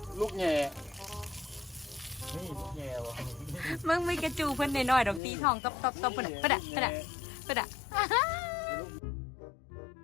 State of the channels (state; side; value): drops out; right; at 5.2 s